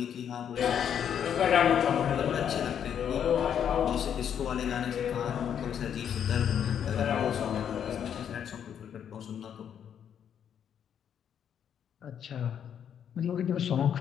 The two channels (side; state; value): right; quieter; 8.7 dB